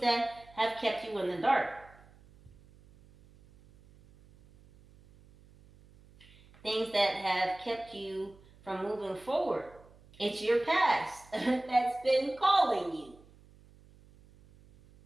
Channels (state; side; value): noise; right; hum, 26 dB below the sound